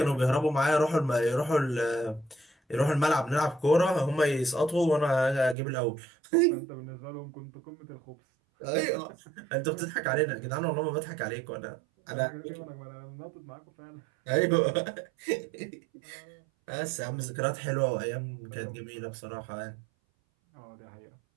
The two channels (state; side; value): drops out; left; at 5.6 s